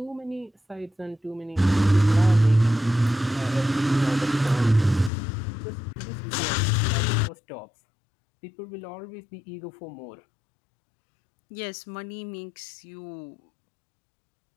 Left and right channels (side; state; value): right; drops out; at 5.1 s